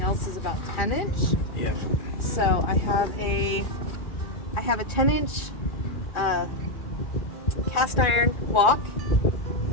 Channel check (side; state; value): right; late; 2.5 ms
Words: else is about 10-inch. Yep. So I have a 10-inch cast iron wok